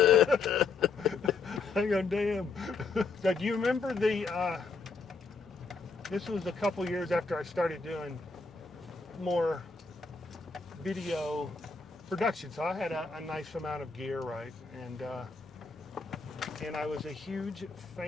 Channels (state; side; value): quieter; right; 4.5 dB